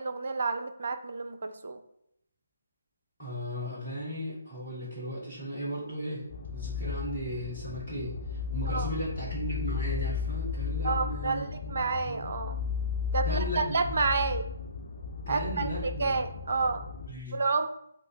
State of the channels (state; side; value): inverted; both; correlation -0.45